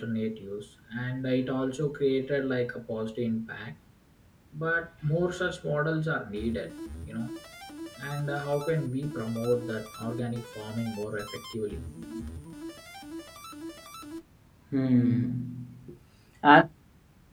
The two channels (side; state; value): both; identical; correlation 1.00